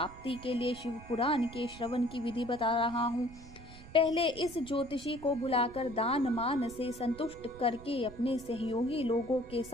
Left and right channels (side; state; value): right; noise; rumble, 17 dB below the sound